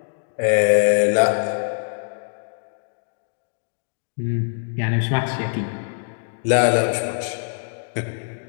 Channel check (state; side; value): silent; right; digital silence